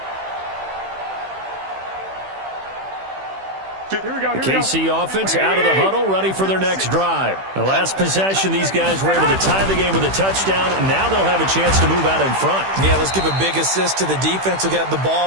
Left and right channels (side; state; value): left; late; 15 ms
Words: The KC offense out of the huddle, ready for their next drive. The last possession, these guys were able to tie the game with a touchdown, and now they'll have a chance to move out in front. Yeah, let's give a big assist to the defense who got the